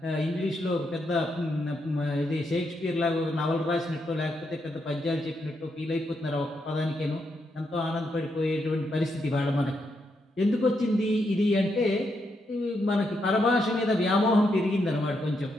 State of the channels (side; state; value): both; normal; correlation 0.80